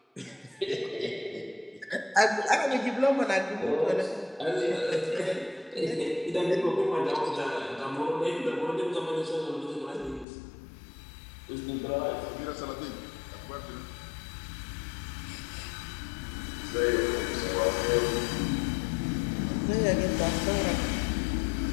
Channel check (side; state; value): right; drops out; at 10.2 s